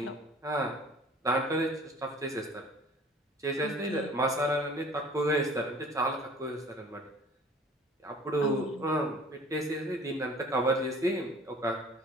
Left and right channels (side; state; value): both; normal; correlation 0.48